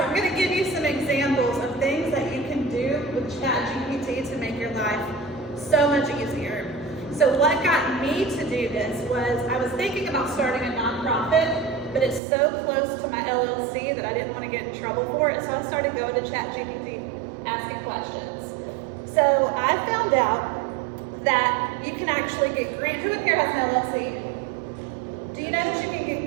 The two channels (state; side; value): drops out; left; at 12.2 s